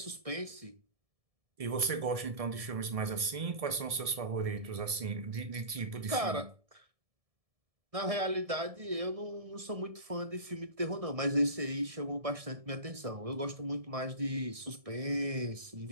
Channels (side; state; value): left; late; 1.7 ms